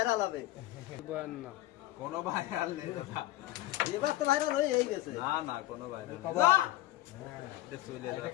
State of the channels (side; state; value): right; quieter; 16.2 dB